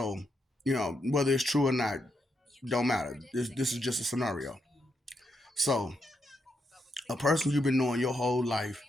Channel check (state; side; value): normal; both; correlation 0.81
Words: whether it's true or not, don't matter. This is just a scenario. So, a person you've been knowing your whole life